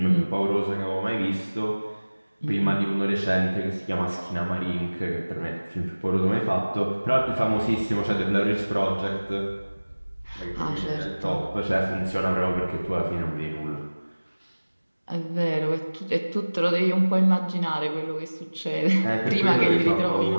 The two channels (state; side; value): inverted; both; correlation -1.00